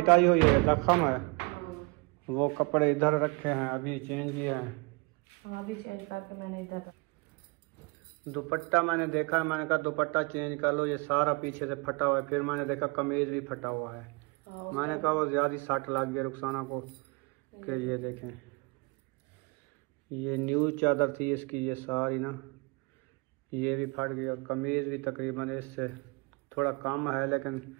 आई हुई है, जख्म है। वो कपड़े इधर रखे हैं, अभी चेंज किए हैं। हाँ अभी चेंज करके मैंने इधर। दुपट्टा मैंने देखा, मैंने कहा दुपट्टा चेंज कर लो, ये सारा पीछे से फटा हुआ है। फिर मैंने देखा कमीज भी फटा हुआ है। हाँ, मैंने कहा वो ज्यादा सट लग गया रुखसाना को, कि ये देखें, ये न्यू चादर थी इसकी, ये सारी ना ये भी फट गई, और कमीज भी तकरीबन इससे थोड़ा कम है, लेकिन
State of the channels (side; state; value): left; quieter; 28.4 dB